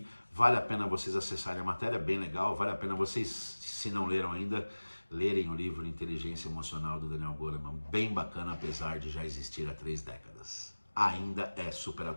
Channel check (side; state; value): both; inverted; correlation -1.00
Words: vale a pena vocês acessarem a matéria, bem legal, vale a pena vocês, se não leram ainda, lerem o livro Inteligência Emocional do Daniel Goleman, bem bacana, apesar de já existir há 3 décadas. Ainda é super